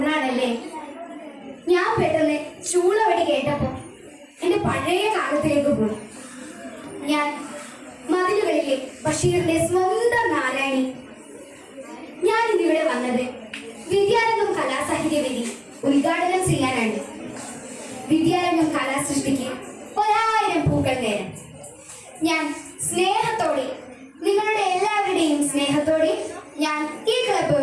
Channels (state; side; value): identical; both; correlation 1.00